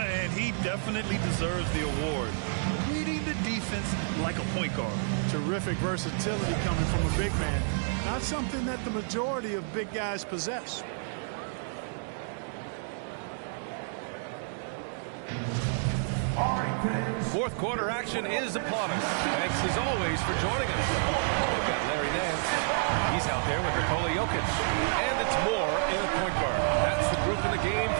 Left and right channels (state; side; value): silent; left; digital silence